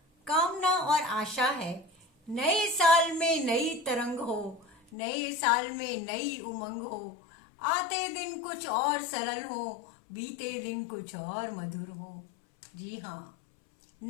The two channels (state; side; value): drops out; right; at 4.8 s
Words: कामना और आशा है। नए साल में नई तरंग हो, नए साल में नई उमंग हो। आते दिन कुछ और सरल हो, बीते दिन कुछ और मधुर हो। जी हाँ,